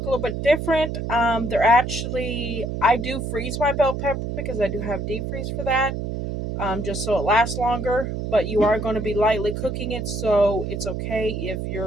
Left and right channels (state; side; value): noise; right; hum, 4 dB below the sound